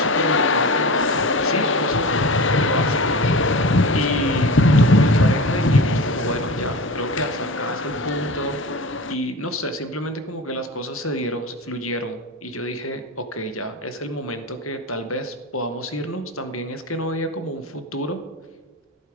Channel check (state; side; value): normal; both; correlation 0.30